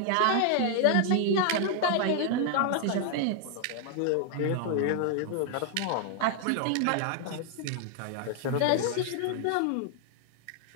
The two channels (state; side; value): different; both; correlation 0.00